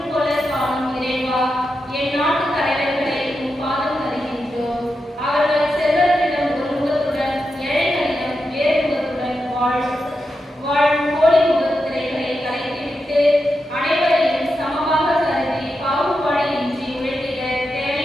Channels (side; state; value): both; normal; correlation 0.88